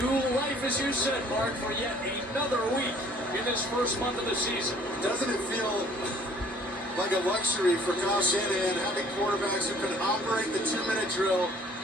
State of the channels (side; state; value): both; normal; correlation 0.56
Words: life, as you said, Mark, for yet another week in this first month of the season. Doesn't it feel like a luxury for Kyle Shanahan having quarterbacks who can operate the 2-minute drill